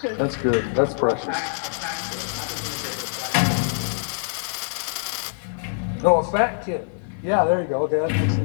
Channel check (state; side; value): silent; right; digital silence